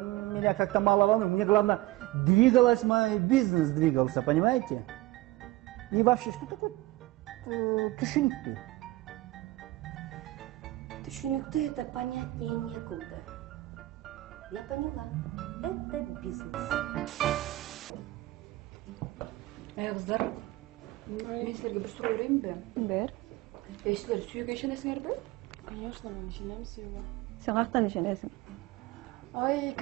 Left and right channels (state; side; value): quieter; left; 18.6 dB